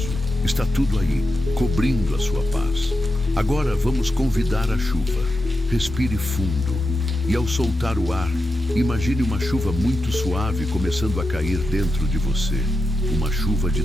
Está tudo aí, cobrindo a sua paz. Agora vamos convidar a chuva. Respire fundo. E ao soltar o ar, imagine uma chuva muito suave começando a cair dentro de você. Uma chuva de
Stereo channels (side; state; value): both; normal; correlation 0.88